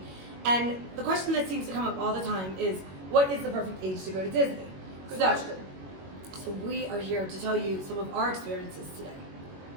And the question that seems to come up all the time is, what is the perfect age to go to Disney? Good question. So we are here to tell you some of our experiences today.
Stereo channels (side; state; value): left; late; 21 ms